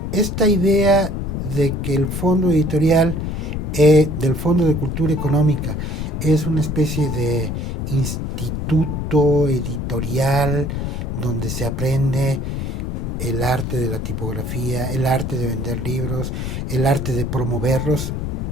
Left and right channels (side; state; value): left; noise; rumble, 3 dB below the sound